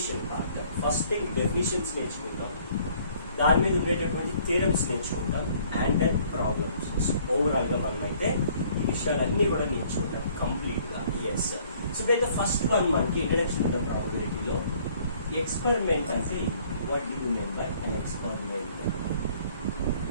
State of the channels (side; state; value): both; inverted; correlation -0.59